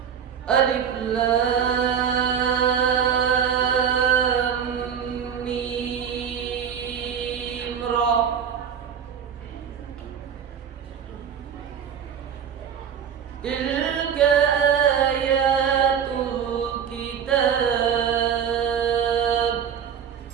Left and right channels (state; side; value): quieter; left; 7.8 dB